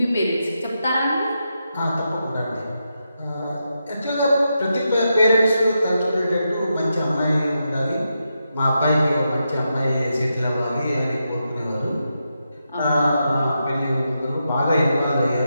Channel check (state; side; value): inverted; both; correlation -0.86